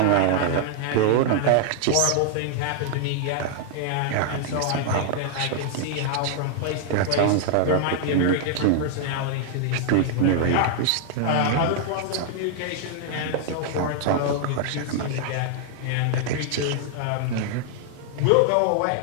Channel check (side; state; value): both; different; correlation 0.00